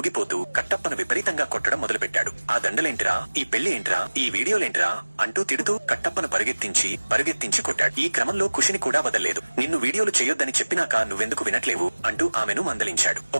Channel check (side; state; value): both; inverted; correlation -1.00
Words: కట్టప్పను విపరీతంగా కొట్టడం మొదలుపెట్టాడు. ఆ దండలేంట్రా, ఈ పెళ్లి ఏంట్రా, ఈ వీడియోలేంట్రా అంటూ తిడుతూ కట్టప్పను పరుగెత్తించి కొట్టాడు. ఈ క్రమంలో ఖుషిని కూడా వదల్లేదు. నిన్ను వీడియోలు చేయొద్దని చెప్పినాక నువ్వెందుకు వినట్లేవు అంటూ ఆమెను మందలించాడు.